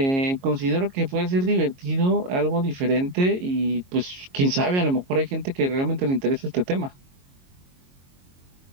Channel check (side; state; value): left; late; 22 ms